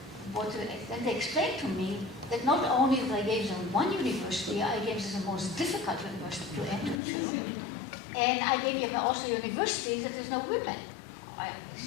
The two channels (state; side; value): drops out; right; at 7.0 s